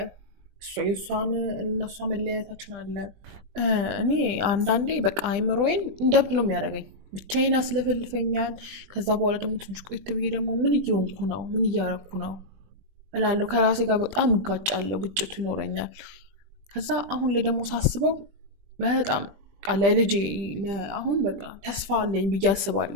የእሷን እና እሷ መለያየታችን አለ። እኔ አንዳንዴ በቃ አይምሮዬን እንደብድ ነው የሚያደርገኝ፣ ብቻዬን አስለፈልፈኛል። ከዛ በኋላ ደግሞ ትንሽ ቆይት ብዬ ደግሞ ምን እየሆንኩ ነው፣ ምን እያረኩ ነው እላለሁ። ከራሴ ጋር በጣም እጋጫለሁ፣ ግጭቱ ይኖረኛል። ከዛ አሁን ላይ ደግሞ ሳስበው በጣም ለልጄ አሁን በቃ ተስፋ አለኝ ብዬ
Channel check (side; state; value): left; late; 20 ms